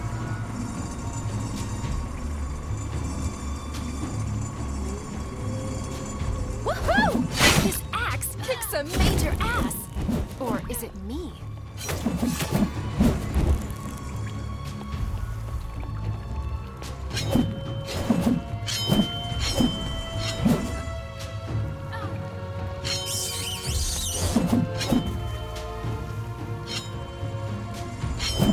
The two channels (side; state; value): both; identical; correlation 1.00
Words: Woohoo! This axe kicks a major ass! Or is it me?